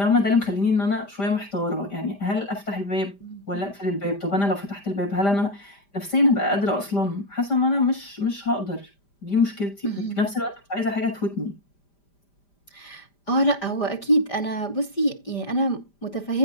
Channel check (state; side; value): late; right; 5.0 ms